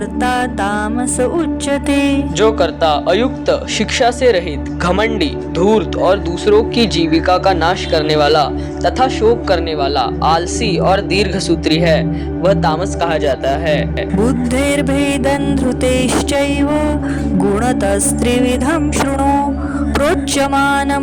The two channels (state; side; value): identical; both; correlation 1.00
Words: तामस उच्यते. जो कर्ता अयुक्त, शिक्षा से रहित, घमंडी, धूर्त और दूसरों की जीविका का नाश करने वाला तथा शोक करने वाला, आलसी और दीर्घसूत्री है वह तामस कहा जाता है. बुद्धेर्भेदं धृतेश्चैव गुणतस्त्रिविधं शृणु